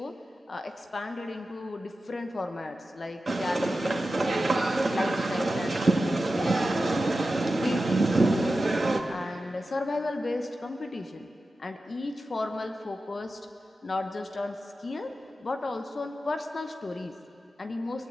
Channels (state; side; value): normal; both; correlation 0.92